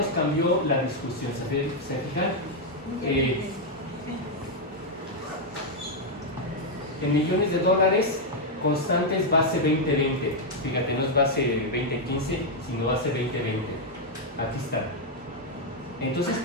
cambió la discusión. ¿Se fijan? En millones de dólares, constantes base 2020. Fíjate, no es base 2015, sino base 2020. Aquí está. Entonces,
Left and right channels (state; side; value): normal; both; correlation -0.01